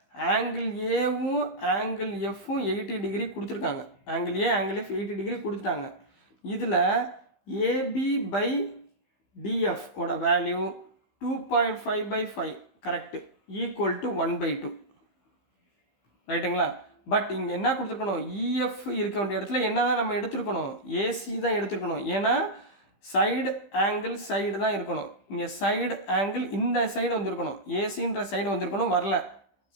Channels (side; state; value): right; late; 15 ms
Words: ஆங்கிள் ஏவும் ஆங்கிள் எஃப்பும் 80 டிகிரி கொடுத்துருக்காங்க. ஆங்கிள் ஏ ஆங்கிள் எஃப் 80 டிகிரி கொடுத்துட்டாங்க. இதில் AB/DF ஓட வேல்யூ 2.5/5 கரெக்டு, ஈக்குவல் டு 1/2. ரைட்டுங்களா? பட் இங்கே என்ன கொடுத்துருக்கணும்? EF இருக்க வேண்டிய இடத்துல என்ன தான் நம்ம எடுத்துருக்கணும்? AC தான் எடுத்துருக்கணும். ஏன்னா சைடு ஆங்கிள் சைடு தான் இருக்கணும். இங்கே சைடு ஆங்கிள் இந்த சைடு வந்திருக்கணும், ஏசின்ற சைடு வந்திருக்கணும், வரல.